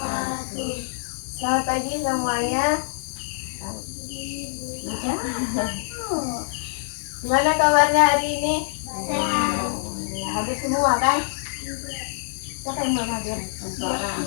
Selamat pagi semuanya. Gimana kabarnya hari ini? Sehat. Habis semua kan? Siapa yang belum hadir?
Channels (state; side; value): silent; right; digital silence